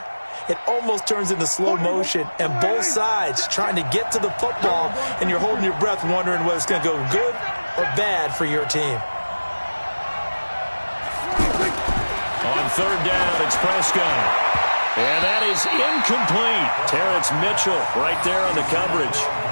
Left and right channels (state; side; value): inverted; both; correlation -1.00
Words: it almost turns into slow motion. And both sides trying to get to the football, and you're holding your breath wondering whether it's going to go good or bad for your team. On 3rd down, it's Prescott. And that is incomplete. Terrence Mitchell right there on the coverage.